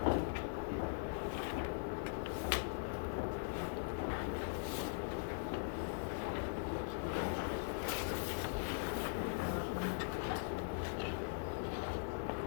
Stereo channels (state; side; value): silent; right; digital silence